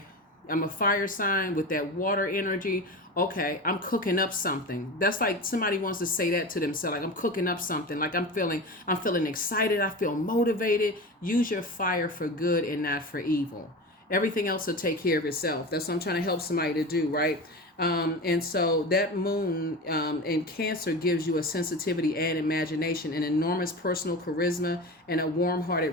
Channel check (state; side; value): normal; both; correlation 0.28